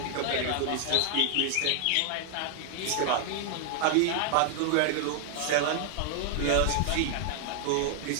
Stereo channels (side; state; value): both; different; correlation 0.00